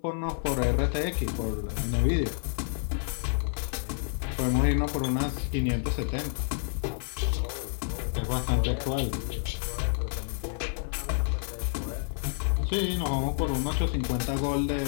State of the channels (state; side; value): silent; right; 58 dB below the other